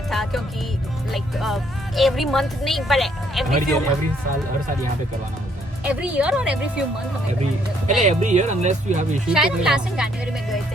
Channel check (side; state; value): both; normal; correlation 0.68